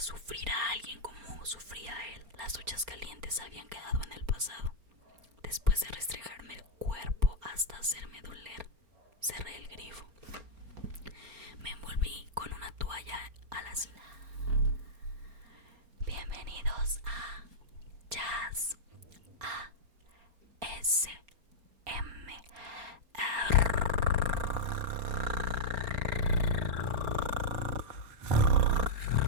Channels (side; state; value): left; late; 4.3 ms